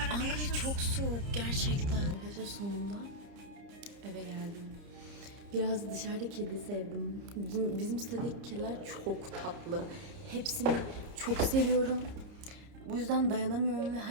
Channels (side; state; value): left; late; 30 ms